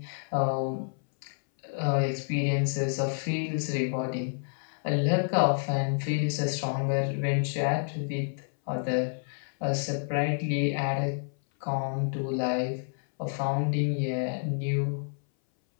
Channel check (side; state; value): right; silent; 59 dB below the other